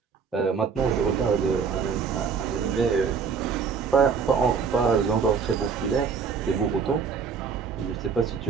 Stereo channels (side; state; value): left; quieter; 5.9 dB